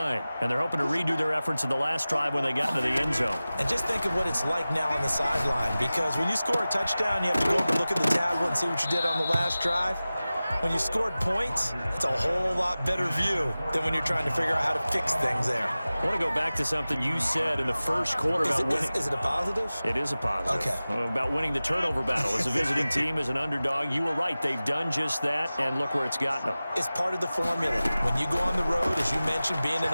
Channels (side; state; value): both; inverted; correlation -0.97